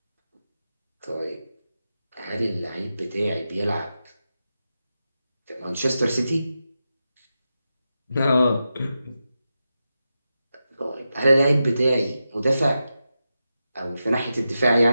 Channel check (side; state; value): both; inverted; correlation -0.90